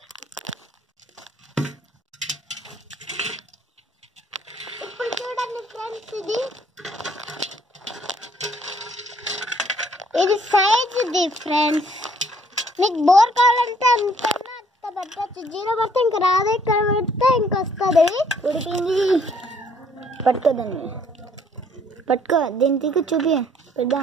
ఇప్పుడు చూడండి ఫ్రెండ్స్, ఇది సైజ్ ఫ్రెండ్స్. మీకు బోర్ కావాలంటే అంత పెట్టచ్చు, 0 పడితే ఇంకా రాదు, ఇక్కడ పెడితే ఇంకా వస్తుంది. ఉడికింది పట్టుకోదండి, పట్టుకో దీనికి చూపి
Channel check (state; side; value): normal; both; correlation 0.63